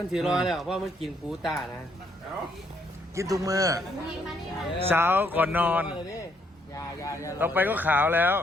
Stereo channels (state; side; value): normal; both; correlation 0.71